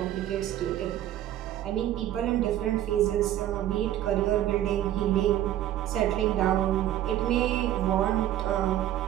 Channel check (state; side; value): quieter; left; 12.5 dB